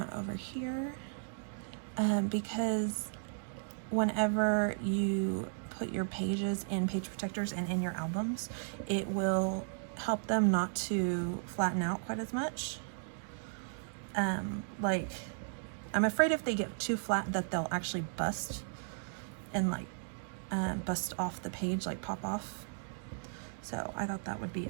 over here because whenever you put your pages in page protectors and in your albums, it will help them not to flatten out quite as much. Like I'm afraid if they get too flat that they'll actually bust and like bust off the page, like pop off. So I thought that would be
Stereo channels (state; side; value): silent; left; digital silence